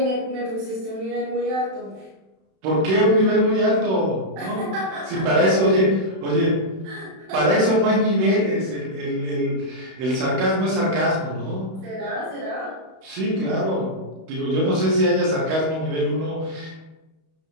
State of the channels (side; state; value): left; late; 31 ms